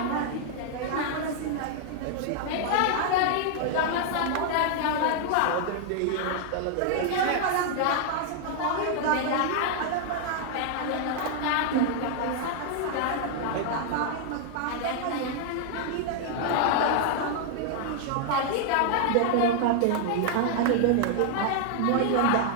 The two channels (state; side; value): different; both; correlation 0.00